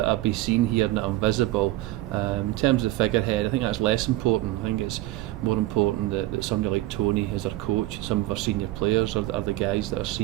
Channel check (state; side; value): quieter; left; 16.5 dB